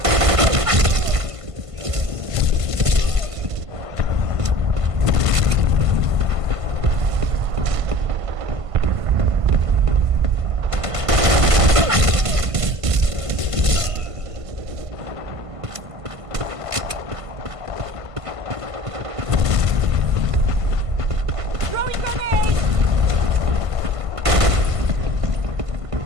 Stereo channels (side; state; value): left; late; 1.5 ms